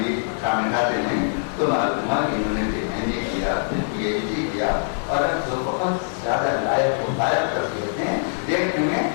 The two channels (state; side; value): silent; right; digital silence